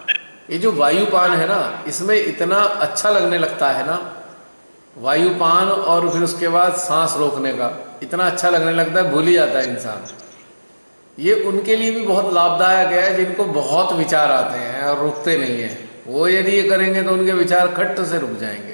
ये जो वायुपान है ना, इसमें इतना अच्छा लगने लगता है ना, वायुपान और फिर उसके बाद सांस रोकने का इतना अच्छा लगने लगता है, भूल ही जाता है इंसान। ये उनके लिए भी बहुत लाभदायक है जिनको बहुत विचार आते हैं और रुकते नहीं हैं। वो यदि ये करेंगे तो उनके विचार खट्ट से रुक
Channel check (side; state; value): both; inverted; correlation -1.00